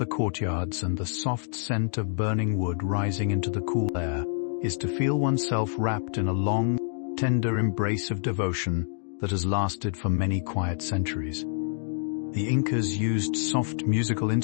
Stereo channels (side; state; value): right; silent; digital silence